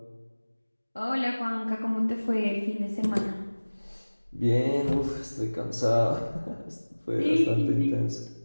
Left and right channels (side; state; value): both; inverted; correlation -1.00